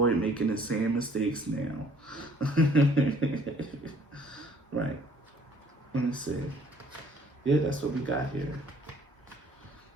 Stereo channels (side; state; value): both; normal; correlation 0.58